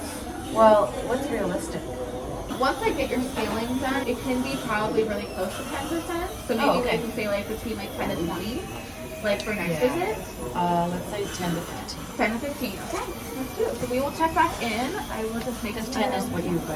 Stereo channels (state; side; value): identical; both; correlation 1.00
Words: well, what's realistic? Once I get your scaling done, it can be probably really close to 10%. So maybe I can say like between like 10 to 20, like for next visit. Let's say 10 to 15. 10 to 15. Okay, let's do it. So we will check back in. I will just make 10 is what you